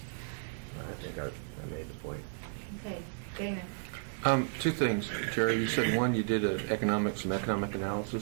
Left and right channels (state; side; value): silent; left; 55 dB below the other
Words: think I made the point. Okay, Dana. Two things, Jerry. You said one, you did some economic